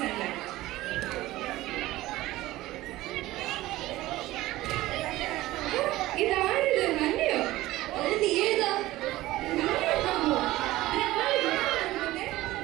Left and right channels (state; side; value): quieter; left; 17.1 dB